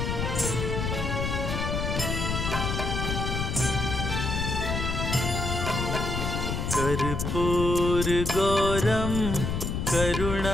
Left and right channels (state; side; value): noise; left; rumble, 2 dB below the sound